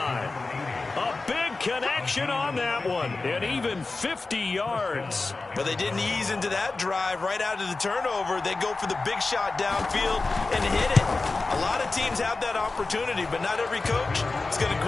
A big connection on that one. And even 50 yards. But they didn't ease into that drive right out of the turnover. They go for the big shot downfield and hit it. A lot of teams have that opportunity, but not every coach is going to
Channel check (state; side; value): quieter; right; 3.6 dB